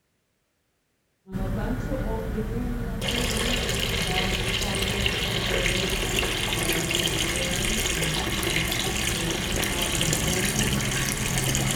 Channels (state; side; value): identical; both; correlation 1.00